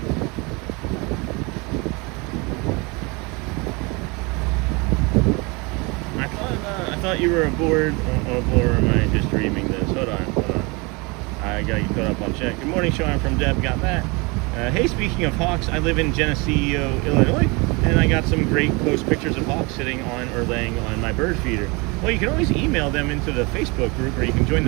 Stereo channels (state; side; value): quieter; left; 27.7 dB